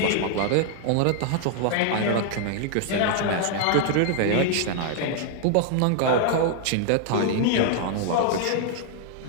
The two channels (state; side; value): different; both; correlation 0.00